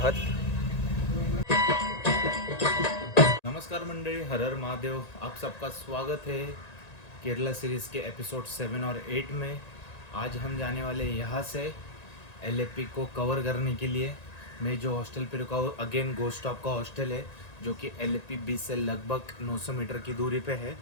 नमस्कार मंडळी, हर हर महादेव। आप सबका स्वागत है केरला सीरीज़ के एपिसोड 7 और 8 में। आज हम जाने वाले यहाँ से एलएपी को कवर करने के लिए। मैं जो हॉस्टल पे रुका हूँ अगेन गोस्ट स्टॉप का हॉस्टल है, जो कि एलएपी बीच से लगभग 900 मीटर की दूरी पे है।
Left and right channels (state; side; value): late; right; 1.9 ms